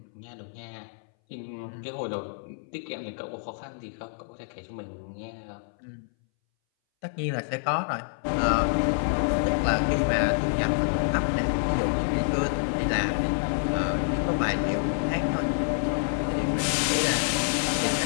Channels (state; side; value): silent; right; 60 dB below the other